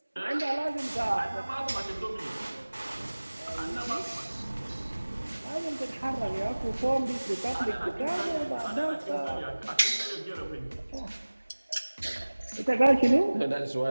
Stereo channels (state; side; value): inverted; both; correlation -1.00